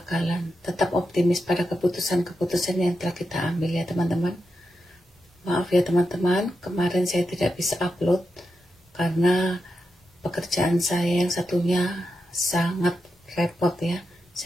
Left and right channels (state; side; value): normal; both; correlation 0.87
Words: Tetap optimis pada keputusan-keputusan yang telah kita ambil ya teman-teman. Maaf ya teman-teman, kemarin saya tidak bisa upload karena pekerjaan saya yang satunya sangat repot ya,